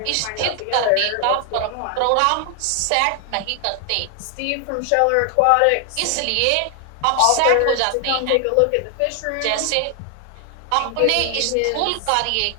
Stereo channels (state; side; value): different; both; correlation 0.00